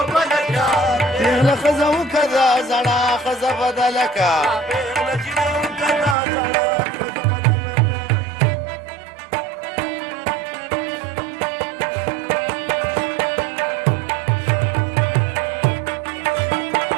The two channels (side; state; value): left; drops out; at 6.2 s